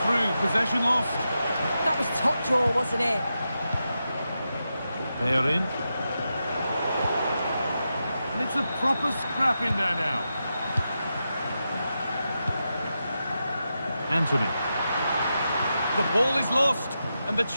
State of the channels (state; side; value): inverted; both; correlation -0.88